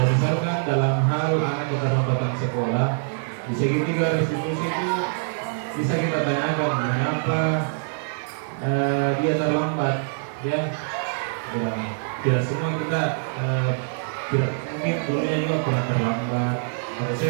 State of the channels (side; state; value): left; silent; digital silence